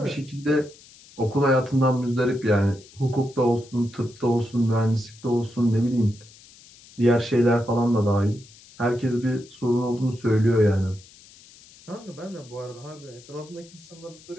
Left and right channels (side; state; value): left; noise; hiss, 23 dB below the sound